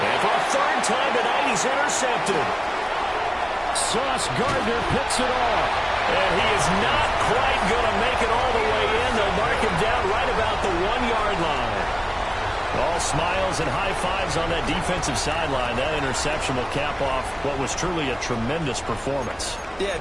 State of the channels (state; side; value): identical; both; correlation 1.00